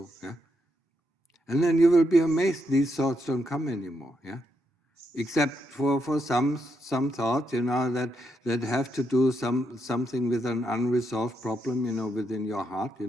yeah? And then you will be amazed these thoughts don't come anymore, yeah? Except for some thoughts, that have to do something with an unresolved problem, within your heart,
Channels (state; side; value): normal; both; correlation 0.80